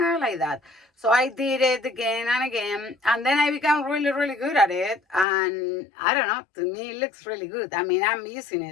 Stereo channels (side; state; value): right; drops out; at 5.2 s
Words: So I did it again and again, and then I became really, really good at it. And I don't know, to me, it looks really good. I mean, I'm using